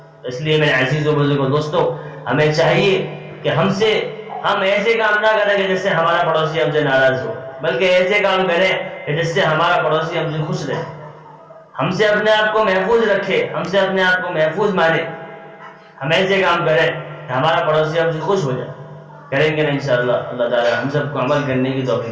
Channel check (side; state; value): both; identical; correlation 1.00